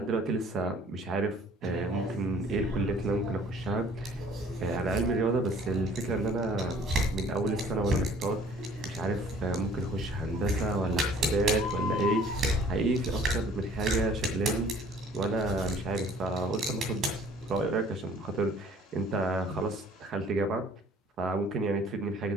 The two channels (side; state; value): both; normal; correlation 0.54